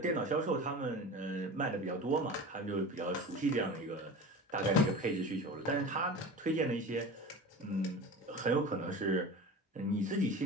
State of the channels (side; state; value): both; normal; correlation 0.33